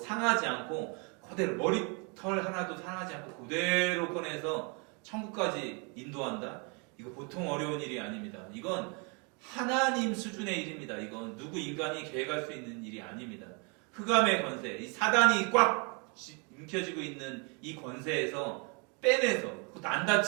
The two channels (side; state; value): left; quieter; 33.6 dB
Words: 않고 그대로 머리털 하나도 상하지 않고 그대로 꺼내서 천국까지 인도한다? 이거 보통 어려운 일이 아닙니다. 이건 하나님 수준의 일입니다. 이건 누구 인간이 계획할 수 있는 일이 아닙니다. 흑암의 권세, 이 사단이 꽉 움켜쥐고 있는 이 권세에서 빼내서 그것도 안